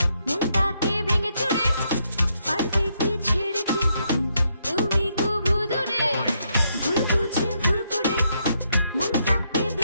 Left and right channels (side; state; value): both; inverted; correlation -0.77